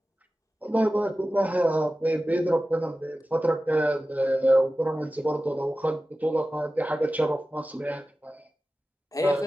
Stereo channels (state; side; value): normal; both; correlation 0.95